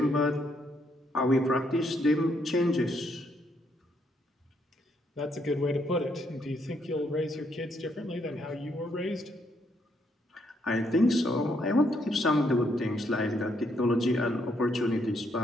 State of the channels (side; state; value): both; normal; correlation 0.74